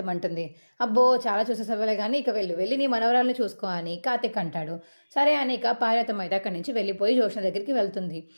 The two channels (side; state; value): both; inverted; correlation -1.00